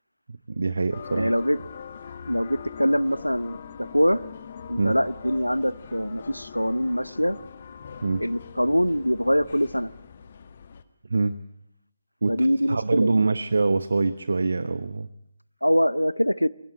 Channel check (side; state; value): both; inverted; correlation -0.97